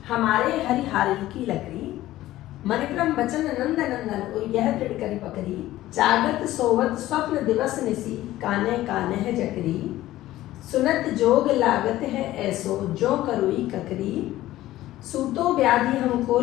हमारे हरिहारिल की लकड़ी, मणिक्रम बचन नंद नंदन और यह दृढ़ करी पकड़ी। जागत सोवत स्वप्न दिवस निसी, काने काने है जकरी। सुनत जोग लागत है ऐसो, जो करुई ककरी। सूतो व्याधि हमको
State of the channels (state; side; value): quieter; right; 15.3 dB